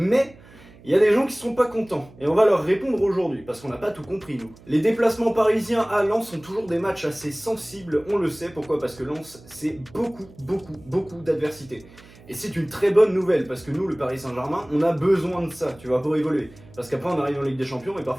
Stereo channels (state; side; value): noise; right; hum, 23 dB below the sound